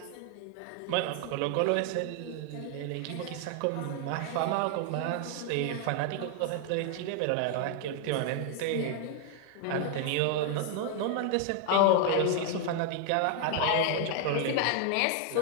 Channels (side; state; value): both; different; correlation 0.00